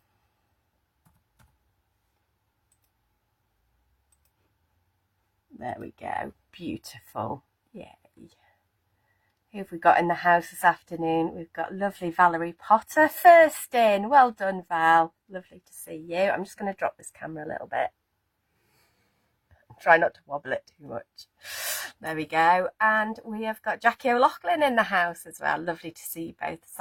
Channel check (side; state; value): both; identical; correlation 1.00